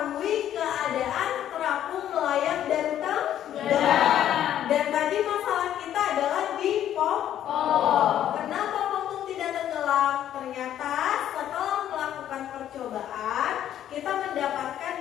keadaan terapung, melayang, dan tenggelam. Dan tadi masalah kita adalah di pompong. Kenapa pompong tidak tenggelam? Ternyata setelah melakukan percobaan, kita mendapatkan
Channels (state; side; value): quieter; right; 11.1 dB